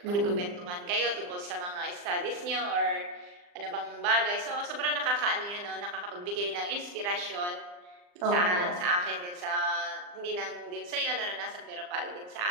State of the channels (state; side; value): late; left; 39 ms